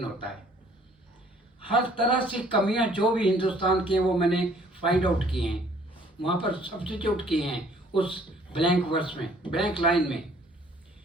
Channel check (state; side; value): normal; both; correlation 0.58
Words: होता है। हर तरह से कमियां जो भी हिंदुस्तान की हैं वो मैंने फाइंड आउट किए हैं, वहाँ पर सब्स्टिट्यूट किए हैं उस ब्लैंक वर्स में, ब्लैंक लाइन में।